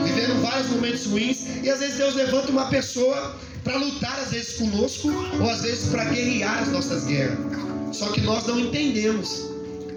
vivendo vários momentos ruins, e às vezes Deus levanta uma pessoa para lutar, às vezes conosco, ou às vezes para guerrear as nossas guerras. Só que nós não entendemos.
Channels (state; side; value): identical; both; correlation 1.00